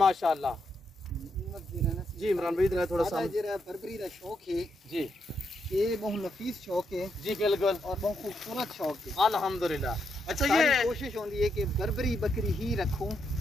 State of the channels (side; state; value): both; normal; correlation 0.80